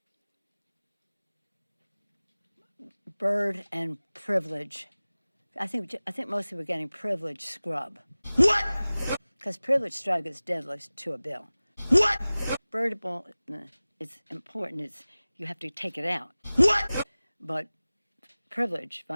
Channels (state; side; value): inverted; both; correlation -0.98